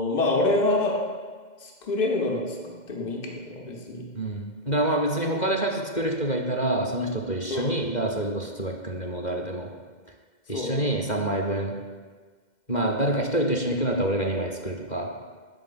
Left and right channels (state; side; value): late; right; 2.1 ms